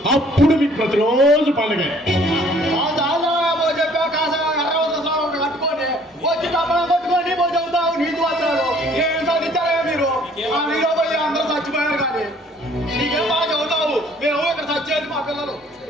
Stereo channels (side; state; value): both; normal; correlation 0.58